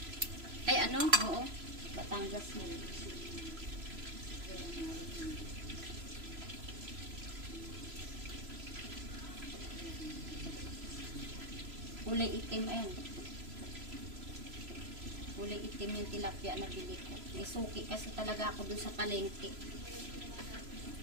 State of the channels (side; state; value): left; late; 3.0 ms